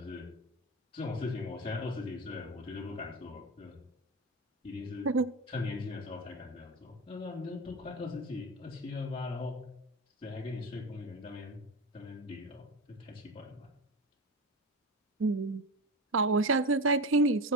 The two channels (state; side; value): normal; both; correlation 0.22